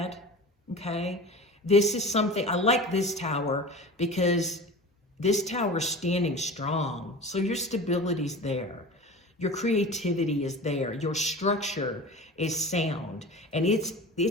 Okay. This is something, I like this Tower because this Tower is standing strong. So your stability's there. Your creativity is there. Your structure is sound. And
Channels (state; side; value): normal; both; correlation 0.34